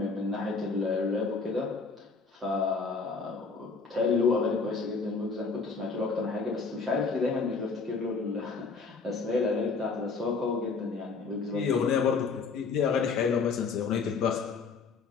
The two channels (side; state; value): right; quieter; 4.7 dB